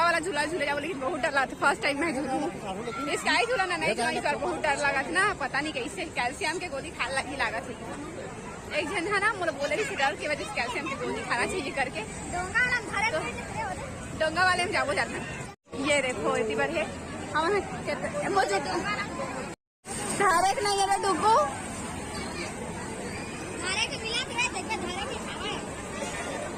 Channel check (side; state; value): both; identical; correlation 1.00